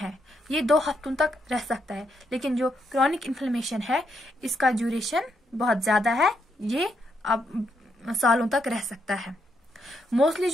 ये 2 हफ्तों तक रह सकता है। लेकिन जो क्रॉनिक इन्फ्लेमेशन है इसका ड्यूरेशन बहुत ज्यादा है, ये अब सालों तक रह सकता है। मोस्टली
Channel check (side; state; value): both; normal; correlation 0.78